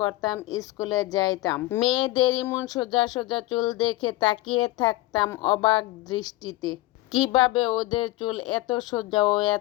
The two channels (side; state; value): right; quieter; 18.5 dB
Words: করতাম, স্কুলে যাইতাম, মেয়েদের ইমন সোজা সোজা চুল দেখে তাকিয়ে থাকতাম অবাক দৃষ্টিতে। কিভাবে ওদের চুল এত সোজা ও